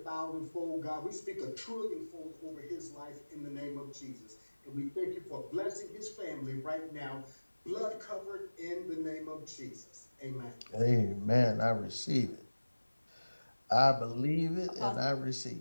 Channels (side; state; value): both; inverted; correlation -1.00